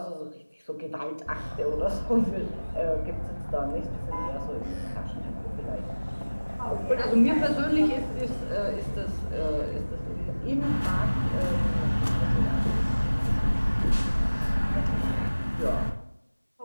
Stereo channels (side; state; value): both; inverted; correlation -1.00